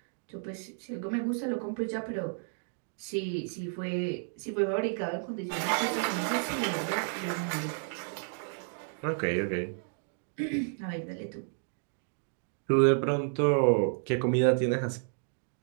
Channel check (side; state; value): left; silent; 57 dB below the other